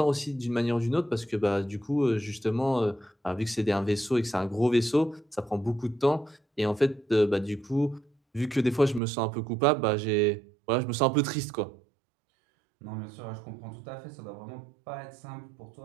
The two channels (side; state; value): left; drops out; at 9.0 s